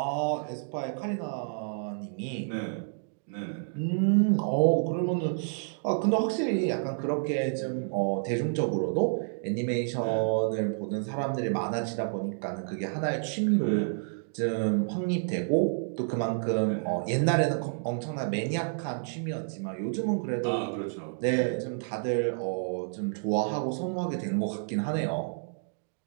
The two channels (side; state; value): left; silent; digital silence